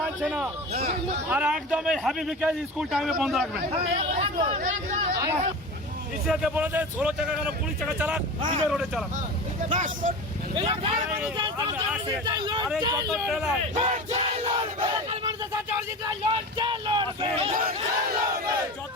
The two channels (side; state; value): both; normal; correlation 0.30